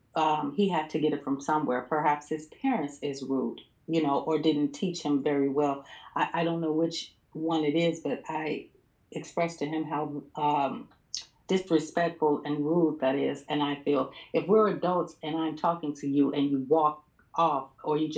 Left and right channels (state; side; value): identical; both; correlation 1.00